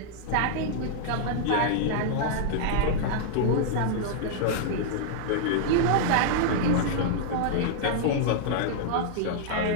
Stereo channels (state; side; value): different; both; correlation -0.01